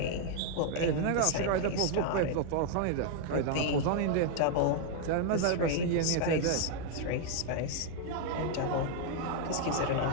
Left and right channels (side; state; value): both; different; correlation 0.00